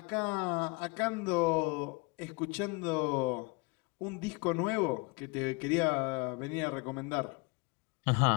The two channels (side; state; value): right; quieter; 28.5 dB